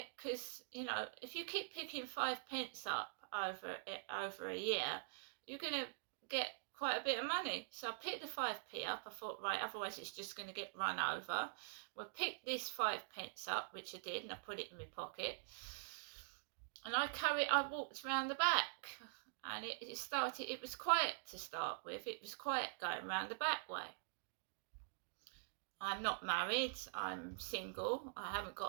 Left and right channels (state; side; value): silent; left; digital silence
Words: Because, you know, if you keep picking 5 pence up over a year, you're going to get quite a bit of money. So I picked the 5p up. I thought, right, otherwise it's just going to get run over. Well, pick this 5 pence up, which I did, and I put it in my pocket. And I walked around the back, and it was quiet to start with. It was quiet going around the back way. I'm not married, I'm single, I haven't